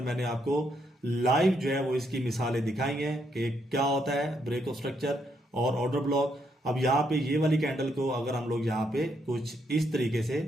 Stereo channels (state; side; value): normal; both; correlation 0.76